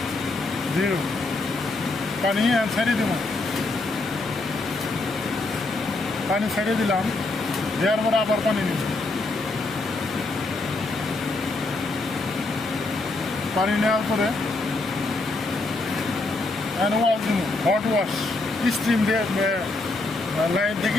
0, পানি ছেড়ে দিব, পানি ছেড়ে দিলাম, দেওয়ার পরে আবার পানি নিব, পানি নেওয়ার পরে হ্যান্ড ওয়াশ দিব, হট ওয়াশ, স্টিম দিয়ে, লাইন থেকে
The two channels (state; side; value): quieter; right; 3.1 dB